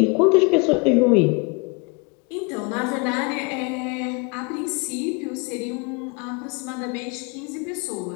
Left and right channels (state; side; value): quieter; right; 30.9 dB